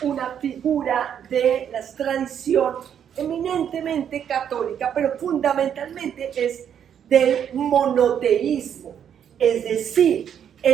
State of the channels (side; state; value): left; quieter; 8.8 dB